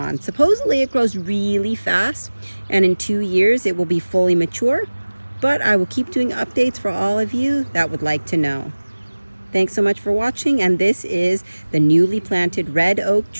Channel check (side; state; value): both; inverted; correlation -1.00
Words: Supposedly it grows really fast, and in 2 years it will be fully mature, but I will keep doing updates for all of you that would like to know. Thanks so much for watching, and this is the newly planted red oak